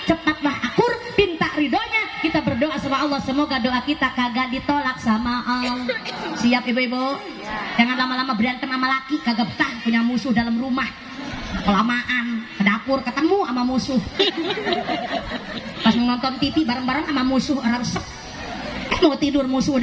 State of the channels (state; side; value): identical; both; correlation 1.00